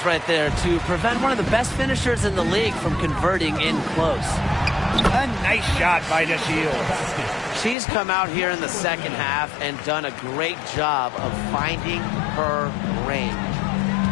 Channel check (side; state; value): right; drops out; at 7.8 s